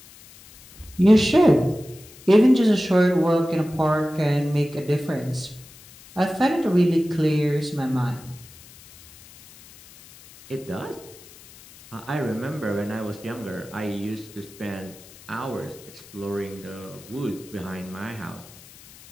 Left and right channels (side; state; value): left; noise; hiss, 21 dB below the sound